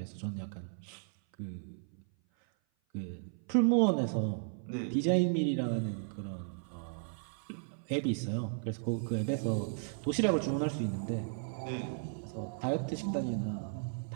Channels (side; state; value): left; silent; 54 dB below the other